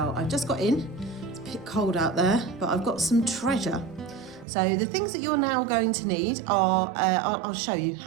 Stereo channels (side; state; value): left; drops out; at 4.5 s